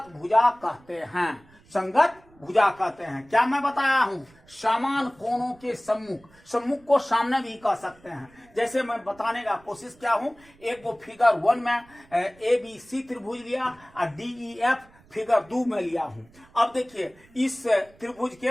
भुजा कहते हैं। संगत भुजा कहते हैं। क्या मैं बताया हूं? समान कोणों के सम्मुख, सम्मुख को सामने भी कह सकते हैं। जैसे मैं बताने का कोशिश किया हूं, एक वो फिगर 1 में ABC त्रिभुज लिया और DEF फिगर 2 में लिया हूं। अब देखिए इस त्रिभुज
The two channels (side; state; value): right; noise; rumble, 28 dB below the sound